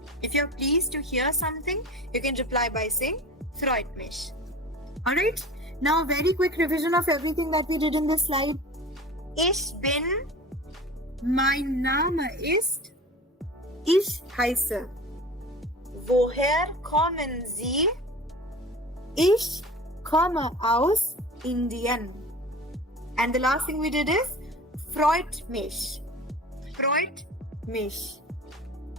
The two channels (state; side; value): normal; both; correlation 0.37